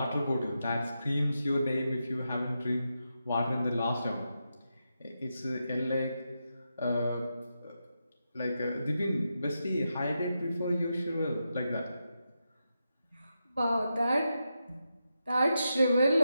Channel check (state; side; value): inverted; both; correlation -0.87